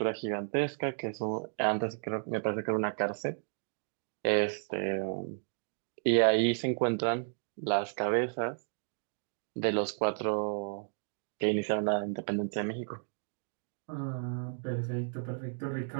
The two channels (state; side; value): silent; left; digital silence